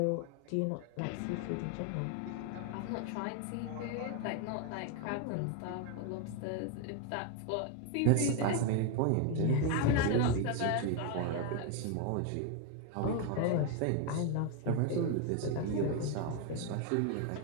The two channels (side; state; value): both; different; correlation 0.01